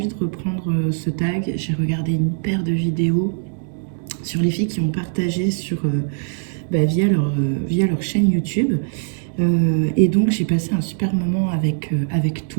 de reprendre ce tag. J'ai regardé une paire de vidéos sur les filles qui ont partagé via leur chaîne YouTube. Et donc j'ai passé un super moment avec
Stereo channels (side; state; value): left; silent; digital silence